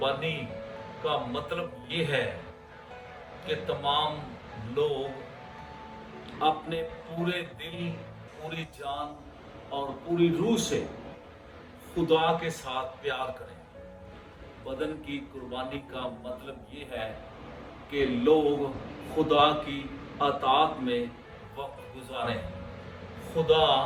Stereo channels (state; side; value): identical; both; correlation 1.00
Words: का मतलब ये है कि तमाम लोग अपने पूरे दिल, पूरी जान और पूरी रूह से खुदा के साथ प्यार करें। बदन की कुर्बानी का मतलब ये है कि लोग खुदा की अताअत में वक्त गुजारें, खुदा